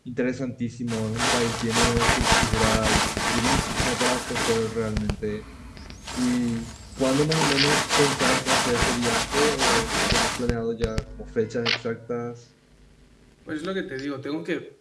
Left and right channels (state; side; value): identical; both; correlation 1.00